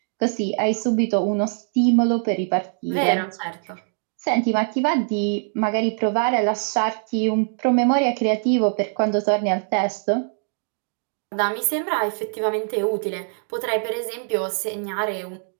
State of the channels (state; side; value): silent; left; digital silence